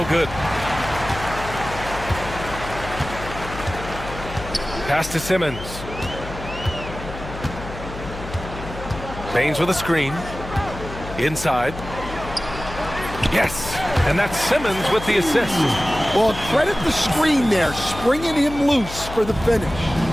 good. Pass to Simmons. Baines with a screen. Inside. Yes. And that's Simmons with the assist. Well, credit the screen there, springing him loose for the finish.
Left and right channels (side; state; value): left; noise; hum, 11 dB below the sound